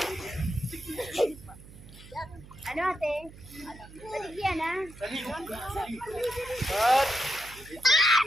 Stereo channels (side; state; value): right; noise; hum, 19 dB below the sound